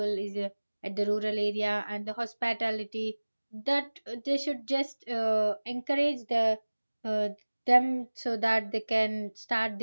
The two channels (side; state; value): both; inverted; correlation -1.00